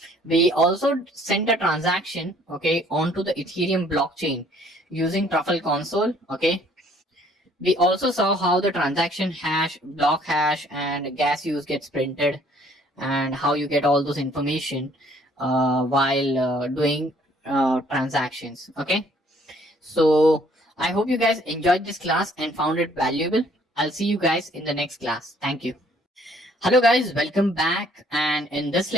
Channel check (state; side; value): normal; both; correlation 0.61